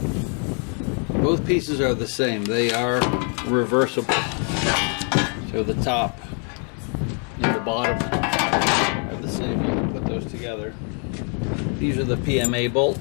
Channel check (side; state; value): right; quieter; 39.7 dB